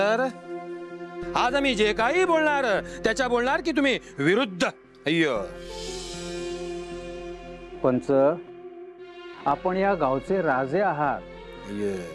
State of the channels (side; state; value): both; identical; correlation 1.00